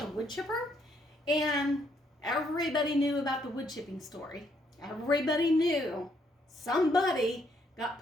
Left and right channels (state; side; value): normal; both; correlation 0.71